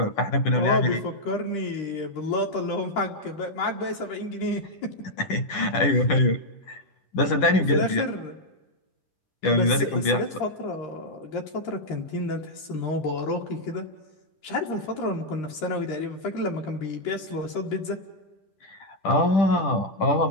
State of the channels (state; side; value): late; right; 10 ms